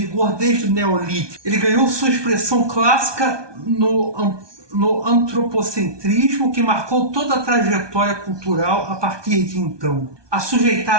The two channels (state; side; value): late; left; 1.2 ms